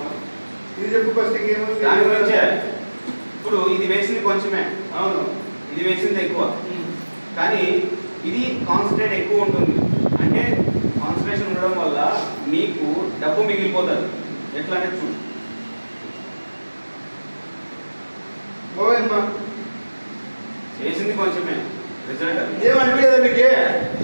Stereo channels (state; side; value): inverted; both; correlation -1.00